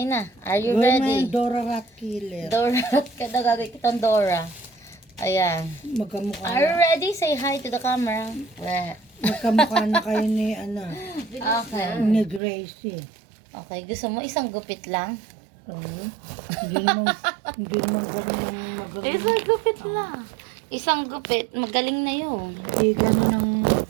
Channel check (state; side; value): drops out; left; at 12.4 s